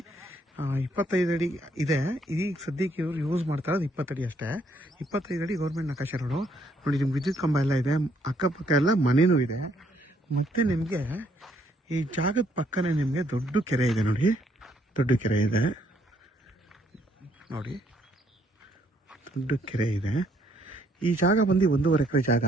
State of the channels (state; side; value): normal; both; correlation 0.69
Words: 25 ಅಡಿ ಇದೆ. ಈಗ ಸದ್ಯಕ್ಕೆ ಇವರು ಯೂಸ್ ಮಾಡ್ತಾ ಇರೋದು 20 ಅಡಿ ಅಷ್ಟೇ. 25 ಅಡಿ ಗೌರ್ಮೆಂಟ್ ನಕಾಶೆ ರೋಡು. ನೋಡಿ, ನಿಮ್ಗೆ ವಿದ್ಯುತ್ ಕಂಬ ಎಲ್ಲ ಇದೆ, ಅಕ್ಕಪಕ್ಕ ಎಲ್ಲ ಮನೆಯೂ ಇದೆ. ಮತ್ತು ನಿಮಗೆ ಈ ಜಾಗದ ಪಕ್ಕನೇ ನಿಮಗೆ ದೊಡ್ಡ ಕೆರೆ ಇದೆ. ನೋಡಿ, ದೊಡ್ಡ ಕೆರೆ ಇದೆ ನೋಡಿ, ದೊಡ್ಡ ಕೆರೆ ಇದೆ. ಈ ಜಾಗ ಬಂದು 1.5 ಎಕರೆ ಜಾಗ.